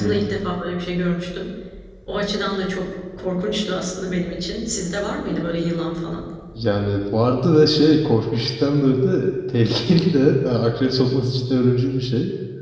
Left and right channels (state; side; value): identical; both; correlation 1.00